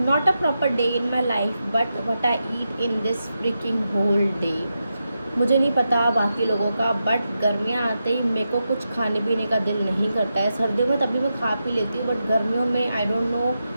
not a proper day in my life, but what I eat in this freaking whole day. मुझे नहीं पता बाकी लोगों का, बट गर्मियाँ आते ही मेरे को कुछ खाने पीने का दिल नहीं करता है. सर्दियों में तभी मैं खा पी लेती हूँ, बट गर्मियों में आई don't know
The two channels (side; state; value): both; inverted; correlation -0.88